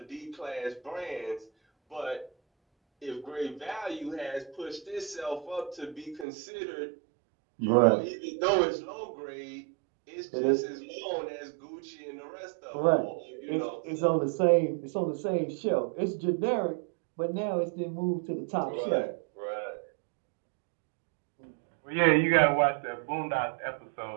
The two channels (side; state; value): left; drops out; at 6.2 s